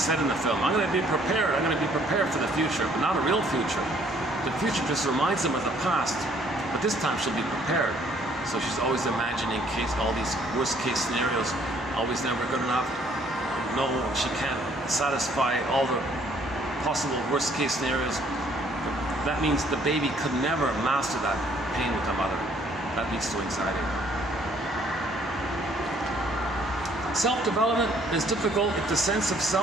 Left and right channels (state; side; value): normal; both; correlation 0.62